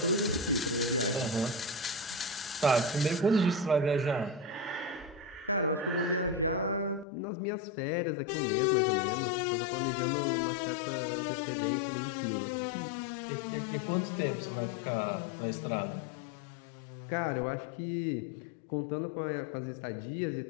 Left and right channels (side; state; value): right; drops out; at 7.1 s